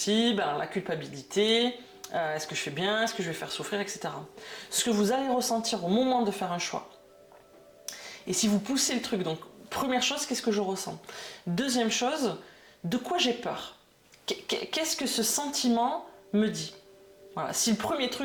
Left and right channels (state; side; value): identical; both; correlation 1.00